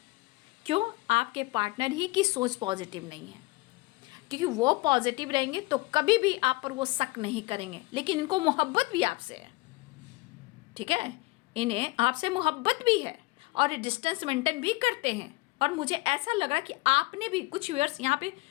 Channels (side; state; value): right; quieter; 22.8 dB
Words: क्यों? आपके पार्टनर ही की सोच पॉजिटिव नहीं है, क्योंकि वो पॉजिटिव रहेंगे तो कभी भी आप पर वो शक नहीं करेंगे, लेकिन इनको मोहब्बत भी आपसे है। ठीक है, इन्हें आपसे मोहब्बत भी है और डिस्टेंस मेंटेन भी करते हैं। और मुझे ऐसा लग रहा कि आपने भी कुछ व्यूअर्स, यहाँ पे